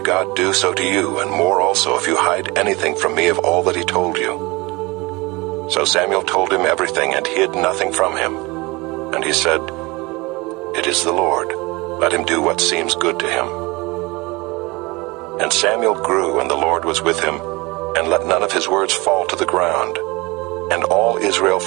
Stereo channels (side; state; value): left; quieter; 24.0 dB